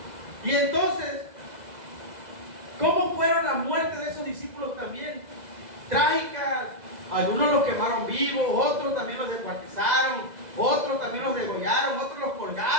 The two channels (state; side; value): late; left; 2.0 ms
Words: Y entonces, ¿cómo fueron las muertes de esos discípulos también? Trágicas. Algunos los quemaron vivos, otros también los descuartizaron, otros también los degollaron, otros los